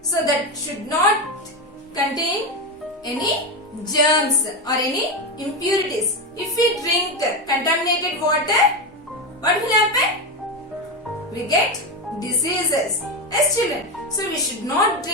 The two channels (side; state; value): both; normal; correlation 0.14